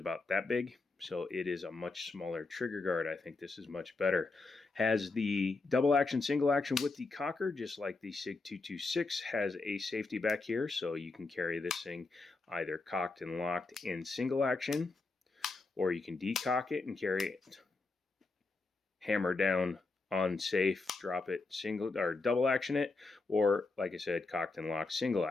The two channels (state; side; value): quieter; right; 3.7 dB